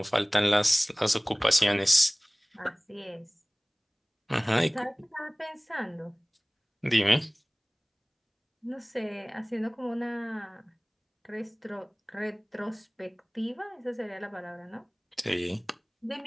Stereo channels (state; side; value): identical; both; correlation 1.00